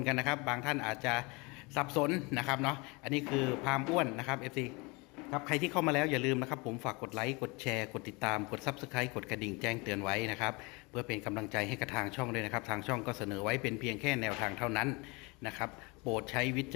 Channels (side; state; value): right; quieter; 27.2 dB